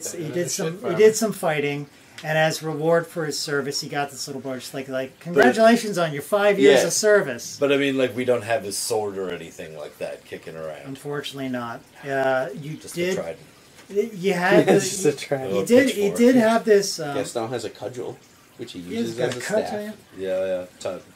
some fighting. And as reward for his service, he got this little brooch. Like congratulations on your 5 years of service. But I mean, like, we don't have his sword or anything like that kicking around. Unfortunately, not. You Just did. a trident. You had this. Just a trident. He did have this. Gaston has a cudgel, which he uses got as a a cut, staff. Yeah.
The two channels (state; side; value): identical; both; correlation 1.00